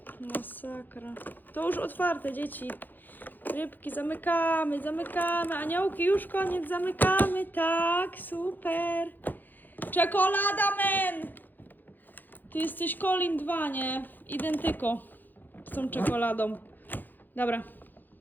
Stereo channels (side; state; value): right; late; 0.087 ms